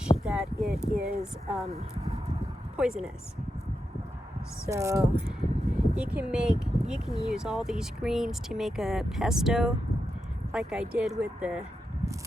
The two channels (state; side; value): normal; both; correlation 0.87